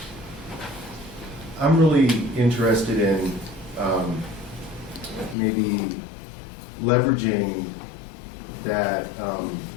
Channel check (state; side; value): drops out; right; at 5.4 s